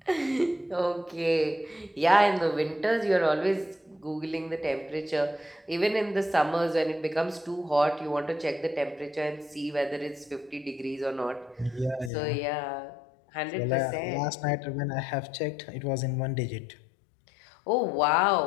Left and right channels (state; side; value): drops out; right; at 12.1 s